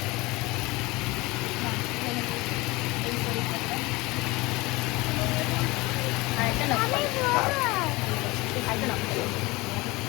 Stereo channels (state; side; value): quieter; right; 22.5 dB